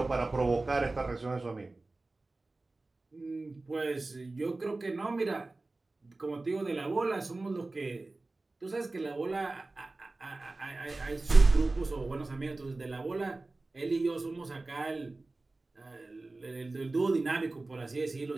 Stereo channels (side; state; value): left; quieter; 3.2 dB